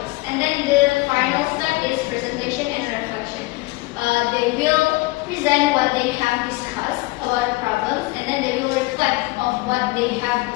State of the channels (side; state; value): right; quieter; 22.8 dB